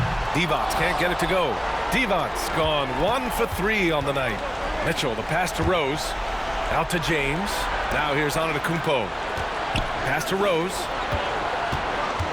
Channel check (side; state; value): both; identical; correlation 1.00